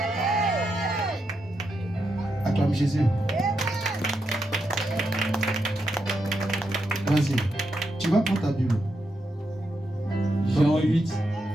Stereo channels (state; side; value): normal; both; correlation 0.84